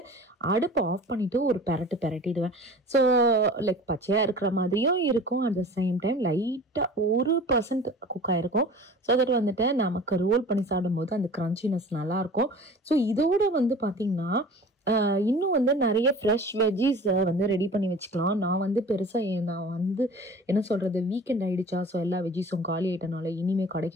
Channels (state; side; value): normal; both; correlation 0.41